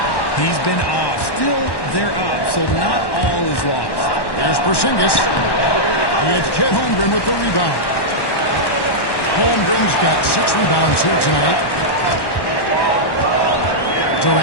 He's been off. Still, they're up, so not all is lost. Here's Porzingis. It's Chet Holmgren with the rebound. Holmgren's got 6 rebounds here tonight.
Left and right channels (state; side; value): late; right; 1.1 ms